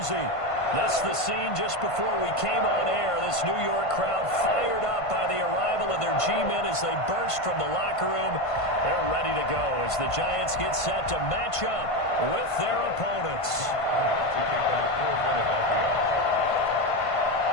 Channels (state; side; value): late; right; 1.5 ms